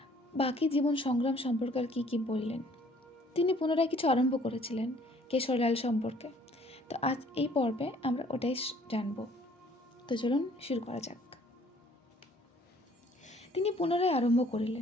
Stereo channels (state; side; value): normal; both; correlation 0.58